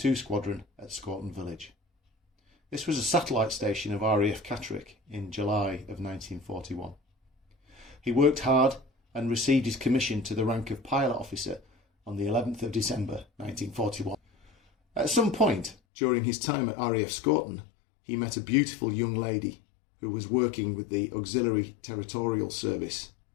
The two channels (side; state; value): right; drops out; at 15.8 s